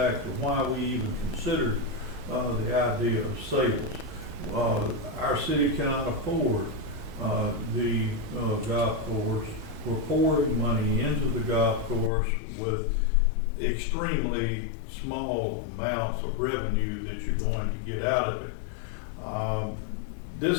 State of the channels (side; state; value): right; drops out; at 12.1 s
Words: of why we even considered the idea of sales. Our city cannot afford the golf course. We're pouring money into the golf course with extremely small amounts of revenue that you're going to get out of it.